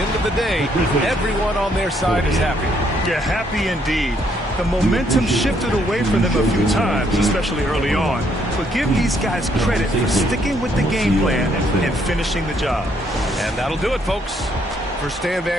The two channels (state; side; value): normal; both; correlation 0.70